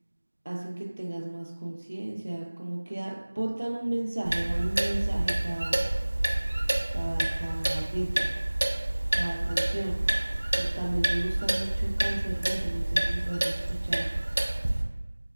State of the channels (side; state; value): both; inverted; correlation -1.00